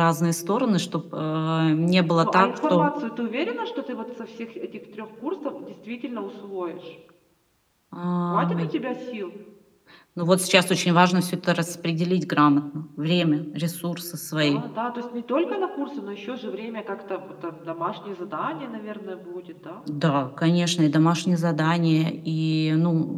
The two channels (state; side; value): identical; both; correlation 1.00